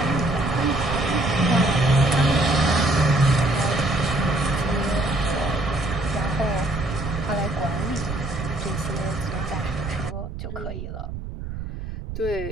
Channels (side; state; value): right; noise; rumble, 8 dB below the sound